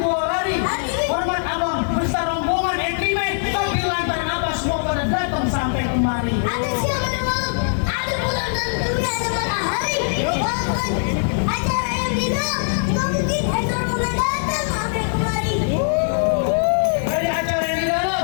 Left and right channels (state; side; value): silent; right; digital silence